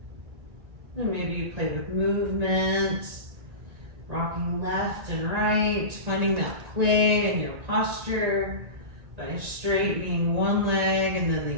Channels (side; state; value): left; late; 1.9 ms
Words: And maybe you play with movement. Rocking left and right, finding that play in your posture by straightening one leg and then